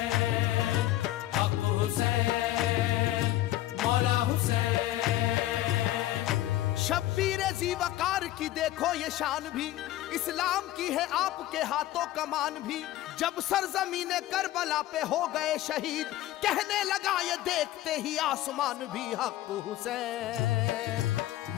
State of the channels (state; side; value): quieter; right; 14.7 dB